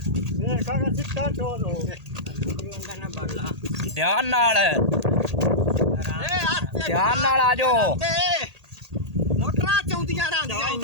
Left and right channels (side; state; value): left; late; 1.8 ms